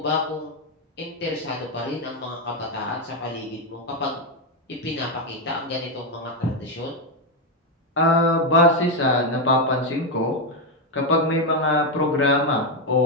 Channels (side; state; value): both; normal; correlation 0.05